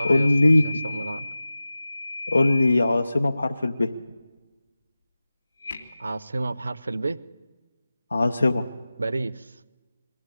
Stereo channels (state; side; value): inverted; both; correlation -0.96